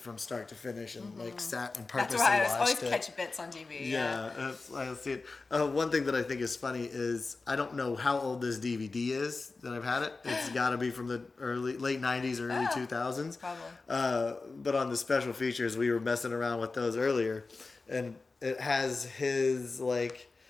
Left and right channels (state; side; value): quieter; right; 3.8 dB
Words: from start to finish and like sat and purposely watched it. That's why I always catch bits on TV. Yeah, I see it. One thing that I think is funny is I don't know how old this DVD is that I've had it. It's got to be from the late '90s, early 2000s. Probably. But on the special features, we were messing around with those earlier, and it has his like